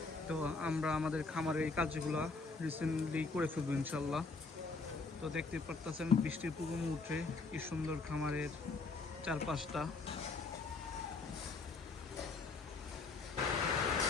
তো আমরা আমাদের খামারে এই কাজগুলো রিসেন্টলি করে ফেলবো ইনশাল্লাহ। তো দেখতে পারতেছেন বৃষ্টির পূর্ব মুহূর্তে কি সুন্দর খামারের চারপাশটা।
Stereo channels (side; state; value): right; quieter; 4.0 dB